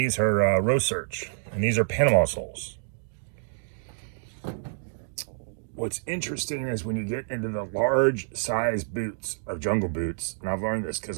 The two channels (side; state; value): left; silent; digital silence